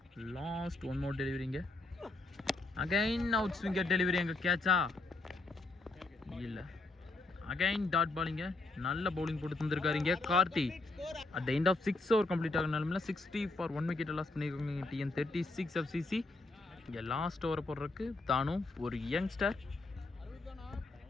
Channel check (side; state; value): right; quieter; 3.2 dB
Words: லாஸ்ட் 1 மோர் டெலிவரிங்க. அகைன் அவுட் ஸ்விங்கர் டெலிவரி அங்கே கேட்சா? இல்லை. அகைன் டாட் பாலிங்க. நல்ல பவுலிங் போட்டு தந்துருக்காருங்க Karthi. At the end of 6 over complete ஆகினாலுமே 60 ஃபார் 1 விக்கெட் லாஸ் பண்ணியிருக்காங்க TN 36 FCC. இங்கே லாஸ்ட் ஓவரை போடுறதுக்கு தானும் ஒரு யங்ஸ்டர்.